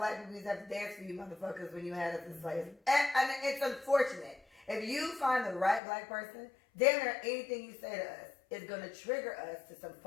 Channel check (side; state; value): right; drops out; at 5.8 s